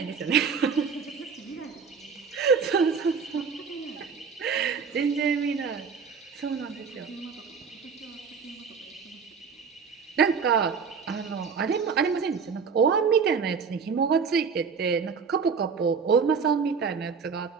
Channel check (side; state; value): left; quieter; 5.8 dB